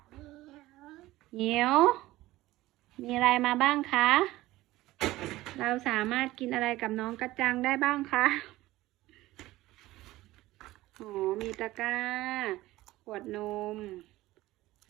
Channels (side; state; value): left; quieter; 17.3 dB